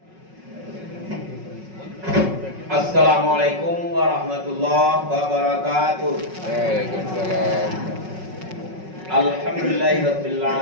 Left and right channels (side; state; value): left; late; 5.4 ms